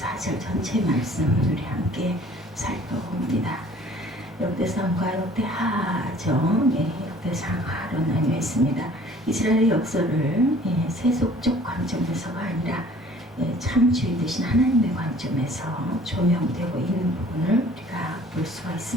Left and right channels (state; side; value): normal; both; correlation 0.52